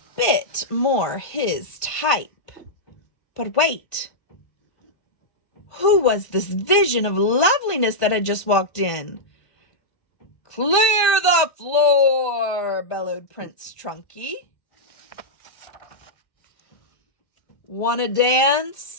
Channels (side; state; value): right; late; 1.5 ms